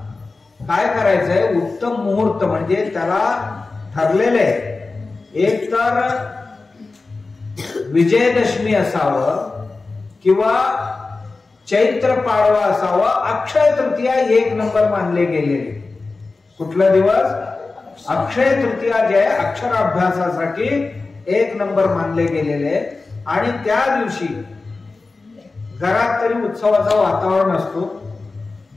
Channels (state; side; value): quieter; right; 3.7 dB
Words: काय करायचंय, उत्तम मुहूर्त म्हणजे त्याला ठरलेले, एक तर विजयदशमी असावं किंवा चैत्र पाडवा असावा, अक्षय तृतीया 1 नंबर मानले गेलेले. कुठला दिवस? अक्षय तृतीया जे अक्षराभ्यासासाठी 1 नंबर मानले गेलेले. आणि त्या दिवशी घरात तरी उत्सवाचं वातावरण असतो.